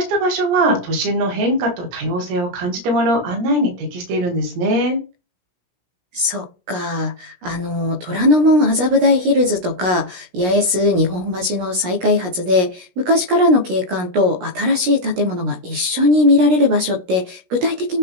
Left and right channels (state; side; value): late; left; 17 ms